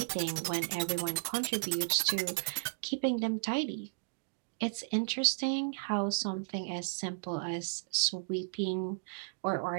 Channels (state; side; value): silent; left; digital silence